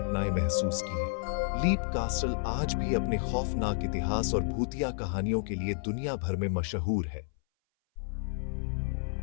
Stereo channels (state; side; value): silent; right; 57 dB below the other